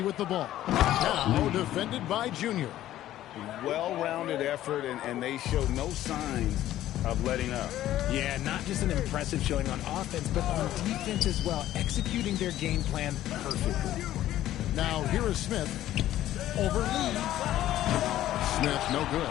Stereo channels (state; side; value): quieter; right; 13.4 dB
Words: with the ball. Now defended by Junior. Well-rounded effort, and they show no signs of letting up. Yeah, not just an impressive showing on offense, but on defense as well, executing their game plan perfectly. Now here is Smith. Over Lee. Smith, no good.